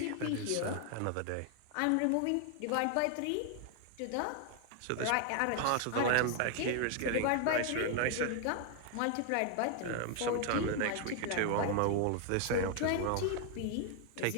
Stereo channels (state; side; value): different; both; correlation 0.00